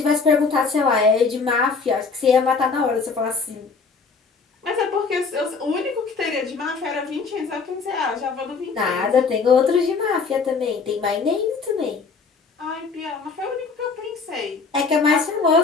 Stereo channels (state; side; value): quieter; right; 4.8 dB